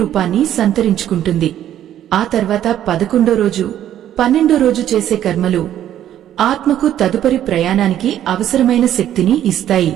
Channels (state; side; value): quieter; left; 11.4 dB